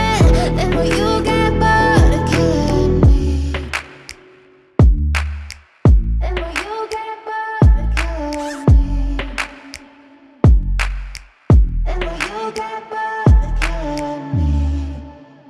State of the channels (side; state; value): both; identical; correlation 1.00